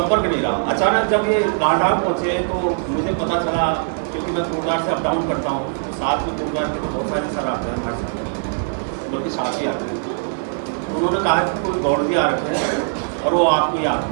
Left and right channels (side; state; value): left; silent; digital silence